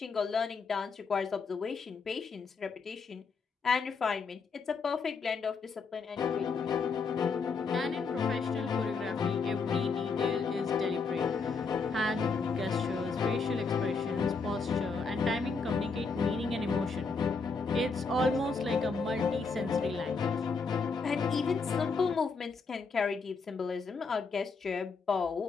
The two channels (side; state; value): right; quieter; 4.7 dB